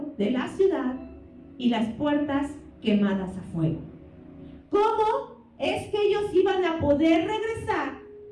de la ciudad y las puertas quemadas a fuego. ¿Cómo es que ellos iban a poder regresar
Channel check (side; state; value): both; identical; correlation 1.00